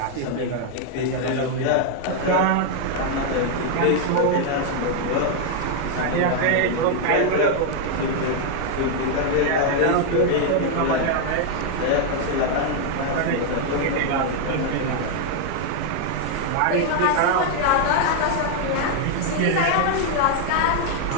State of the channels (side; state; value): both; different; correlation 0.00